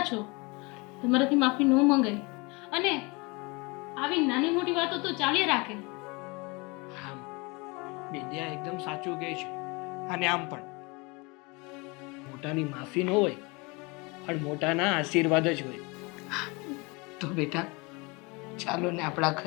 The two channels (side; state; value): right; quieter; 27.3 dB